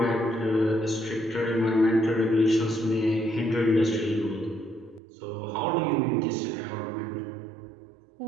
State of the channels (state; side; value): drops out; left; at 5.0 s